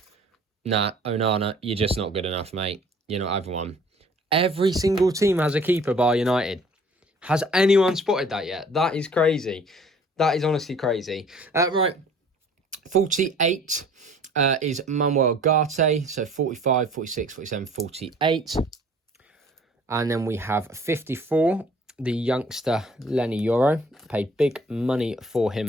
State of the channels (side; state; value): both; normal; correlation 0.53